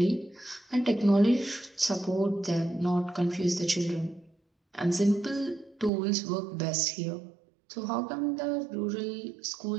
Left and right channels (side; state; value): left; drops out; at 5.9 s